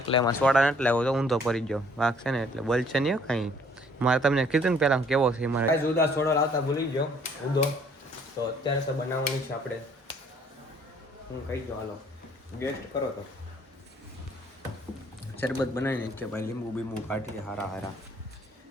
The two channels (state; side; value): normal; both; correlation 0.60